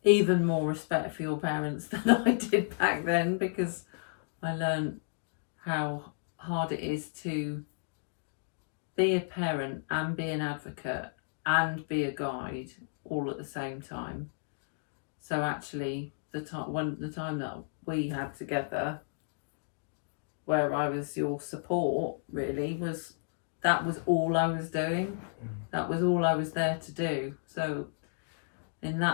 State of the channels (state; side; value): silent; right; digital silence